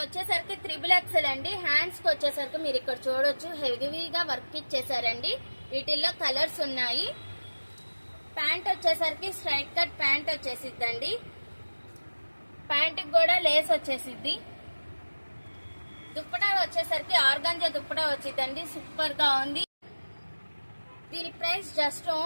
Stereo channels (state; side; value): inverted; both; correlation -1.00